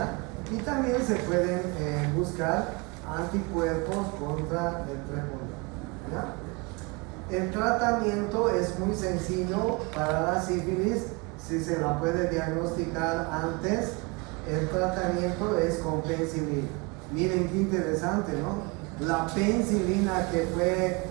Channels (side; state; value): left; quieter; 28.0 dB